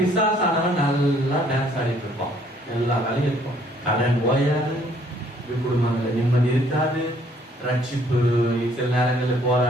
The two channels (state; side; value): normal; both; correlation 0.63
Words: நல்லா டான்ஸ் ஆடிட்டு இருப்பான், எல்லா வேலையும் இருக்கும், கடன் ஓயாது, குடும்பங்கள்ல நிம்மதி இருக்காது, ரட்சிப்பு சில நேரங்களில்